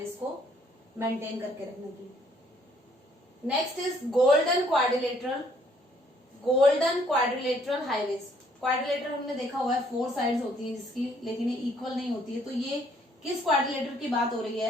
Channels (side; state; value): both; normal; correlation 0.65